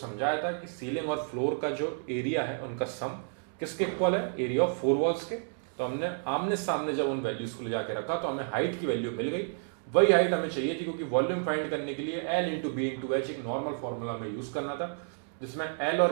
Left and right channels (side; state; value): left; silent; digital silence